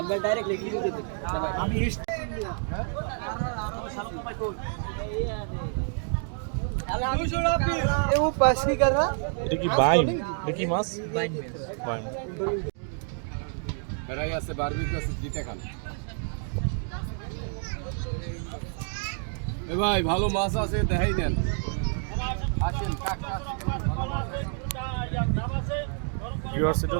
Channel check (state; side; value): silent; left; 57 dB below the other